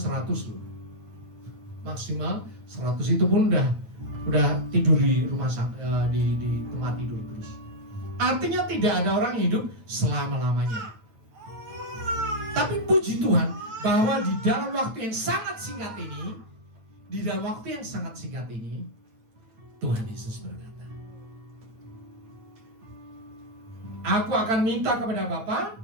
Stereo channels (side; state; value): left; late; 9.0 ms